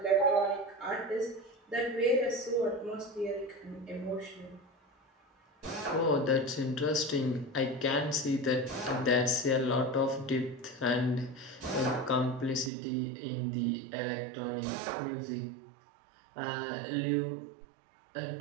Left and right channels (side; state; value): left; drops out; at 12.7 s